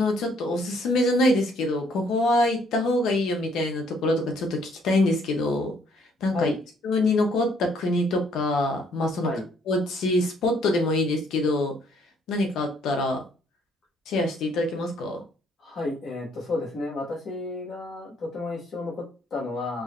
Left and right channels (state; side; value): normal; both; correlation 0.65